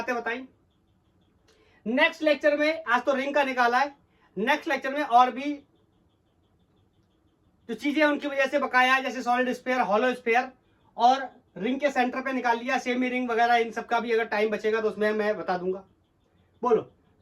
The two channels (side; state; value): both; identical; correlation 1.00